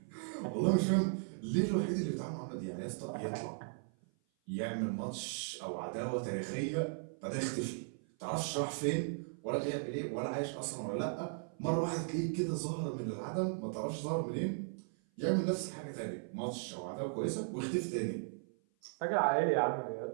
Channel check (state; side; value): silent; left; 53 dB below the other